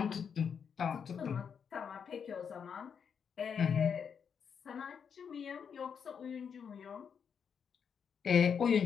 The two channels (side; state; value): right; quieter; 7.0 dB